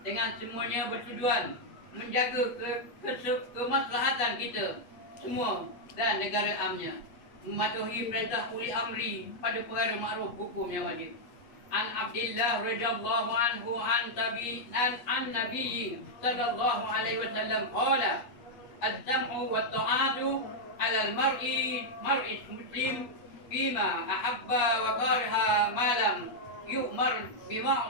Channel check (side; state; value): right; late; 8.5 ms